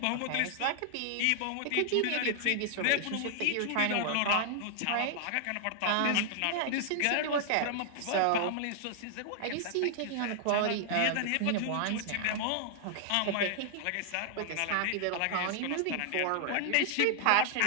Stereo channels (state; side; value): different; both; correlation 0.00